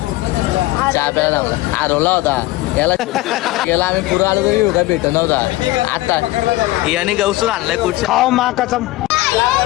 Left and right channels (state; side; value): quieter; right; 18.6 dB